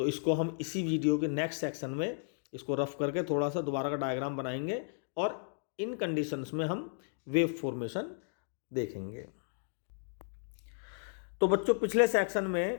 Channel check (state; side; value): silent; right; digital silence